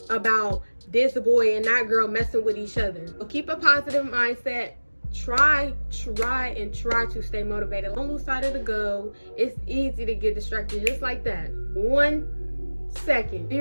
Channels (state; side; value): inverted; both; correlation -1.00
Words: about this boy and that girl messing with each other. So keep a positive mindset. Try to stay motivated. Don't lose sight of the goal. It's easy to get distracted just like that. 1 second,